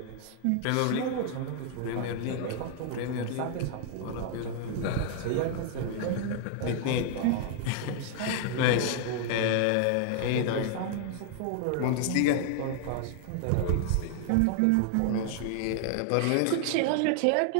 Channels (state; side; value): different; both; correlation 0.00